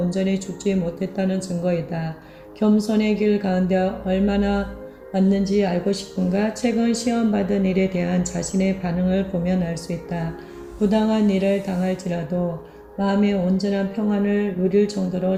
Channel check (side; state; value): both; identical; correlation 1.00